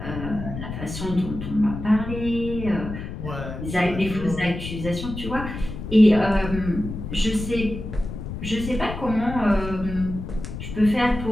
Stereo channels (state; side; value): noise; left; rumble, 8 dB below the sound